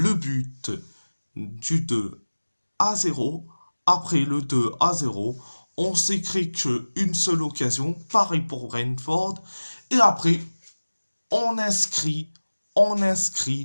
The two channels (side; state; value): both; inverted; correlation -1.00